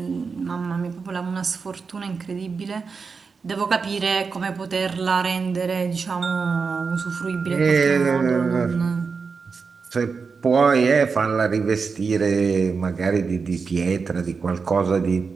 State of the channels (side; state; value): left; quieter; 5.1 dB